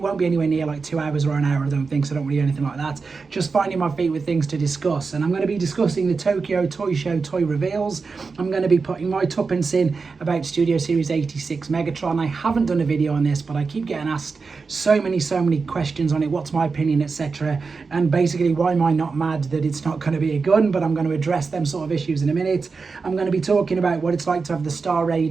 won't be anywhere near like 2 hours or an hour, I don't think, so I don't really do anything like that. Just finding my feet with things to discuss. And I'm going to be discussing the Tokyo Toy Show toy reveals. I'm going to be putting my tuppence in about Studio Series 86 Megatron. I haven't done a video on this, but I keep getting asked so many questions on it. What's my opinion, etc. And basically, why am I not mad that it's not going to be a gun, but I'm going to address them sort of issues in a minute. I'm going to be talking about what it's like to have the Star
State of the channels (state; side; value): quieter; left; 4.6 dB